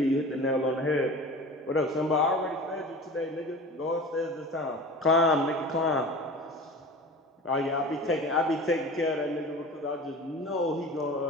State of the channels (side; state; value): both; normal; correlation 0.37